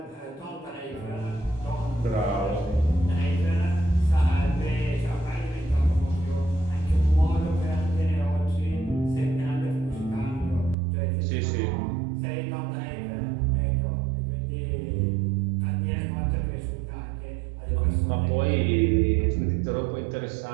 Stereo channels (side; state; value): left; drops out; at 10.8 s